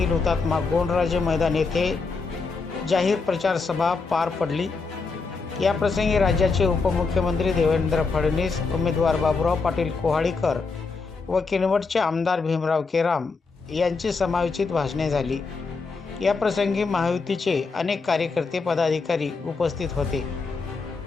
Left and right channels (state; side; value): quieter; right; 4.4 dB